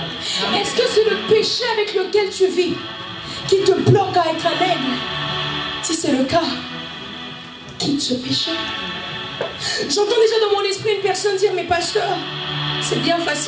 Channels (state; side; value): identical; both; correlation 1.00